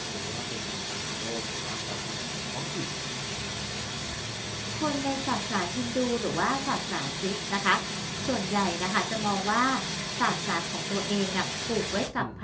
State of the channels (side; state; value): both; identical; correlation 1.00